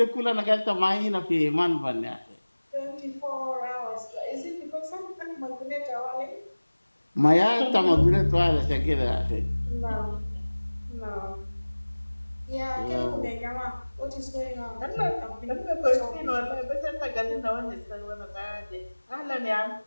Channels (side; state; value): both; inverted; correlation -1.00